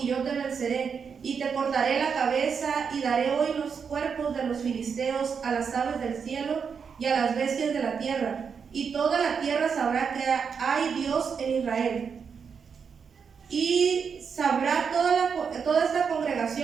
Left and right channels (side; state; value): left; quieter; 6.3 dB